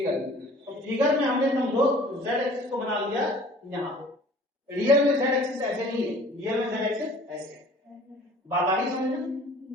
है। तो फिगर में हमने समझो जेड एक्सिस को बना लिया यहां पे, रियल में जेड एक्सिस ऐसे नहीं है, रियल में जेड एक्सिस ऐसे है। बात आ रही समझना,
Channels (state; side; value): normal; both; correlation 0.49